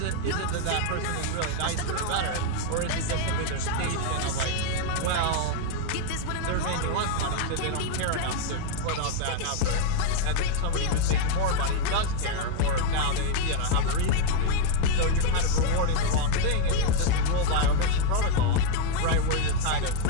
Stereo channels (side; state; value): both; different; correlation 0.01